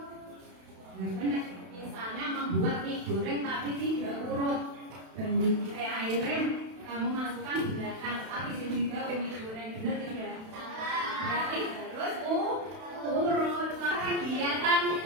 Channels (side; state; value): left; late; 32 ms